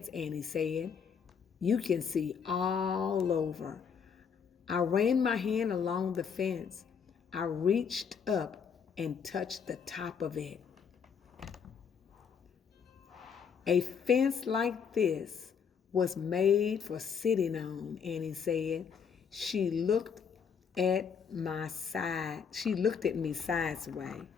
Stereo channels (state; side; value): quieter; right; 6.7 dB